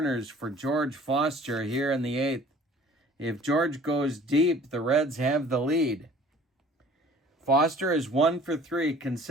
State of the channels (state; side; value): normal; both; correlation 0.50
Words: for George Foster here in the 8th. If George goes deep, the Reds have the lead. Foster is 1 for 3.